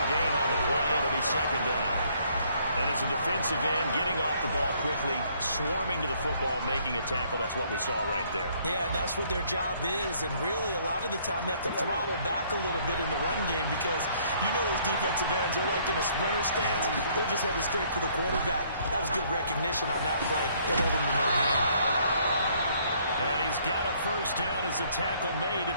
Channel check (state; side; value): inverted; both; correlation -0.64